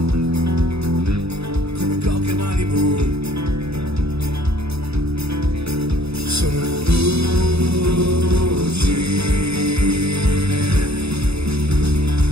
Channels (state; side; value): late; left; 0.78 ms